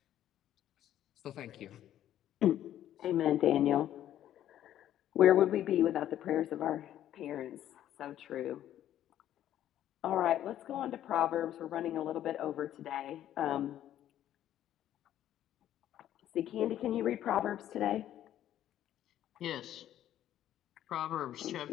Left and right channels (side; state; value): right; quieter; 11.8 dB